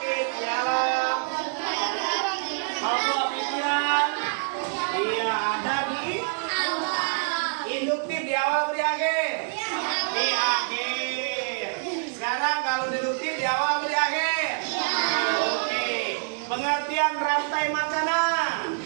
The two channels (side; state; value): left; silent; 61 dB below the other